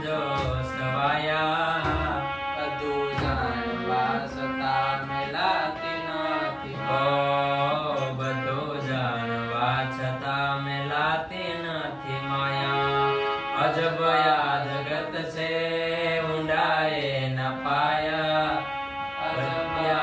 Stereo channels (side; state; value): both; identical; correlation 1.00